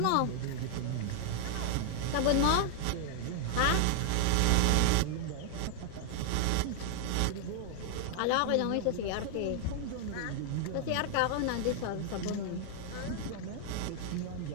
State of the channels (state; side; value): different; both; correlation 0.00